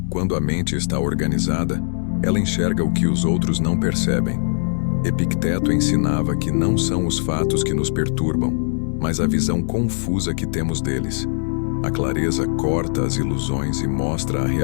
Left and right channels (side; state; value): right; silent; digital silence